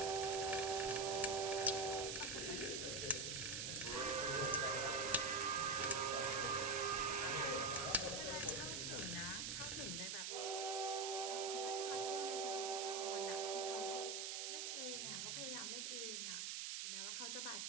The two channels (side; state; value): right; noise; hiss, 2 dB below the sound